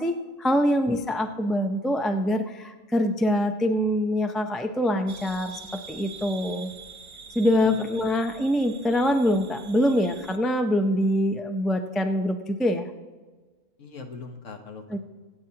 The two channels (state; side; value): normal; both; correlation 0.73